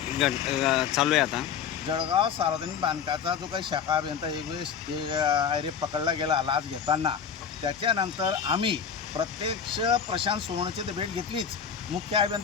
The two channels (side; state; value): right; quieter; 7.3 dB